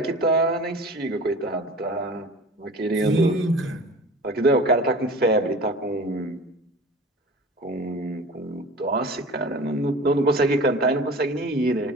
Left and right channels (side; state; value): both; normal; correlation 0.40